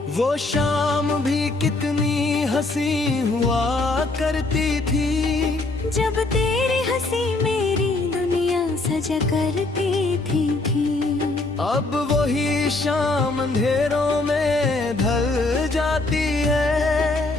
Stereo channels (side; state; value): right; quieter; 3.2 dB